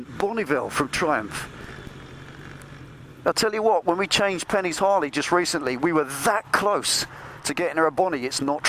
Bonneville from Triumph. I'll tell you what, when we changed Penny's Harley just recently, we were that close to getting her a Bonnie. It's not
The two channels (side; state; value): both; identical; correlation 1.00